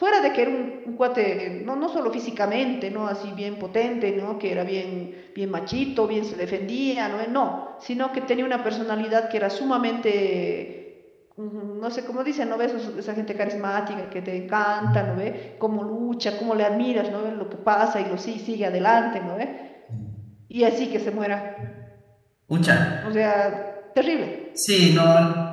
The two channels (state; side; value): identical; both; correlation 1.00